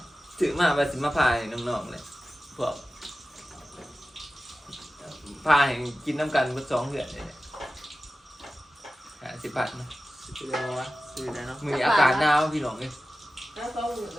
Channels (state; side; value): normal; both; correlation 0.95